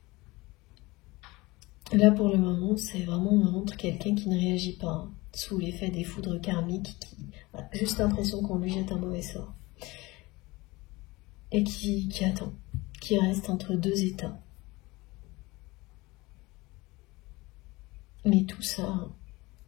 Là pour le moment, c'est vraiment, on me montre quelqu'un qui ne réagit pas sous l'effet des foudres karmiques, qui a juste l'impression qu'on lui jette un mauvais sort. Et qui attend, qui reste entre deux états. Mais tout ça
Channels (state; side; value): quieter; right; 22.1 dB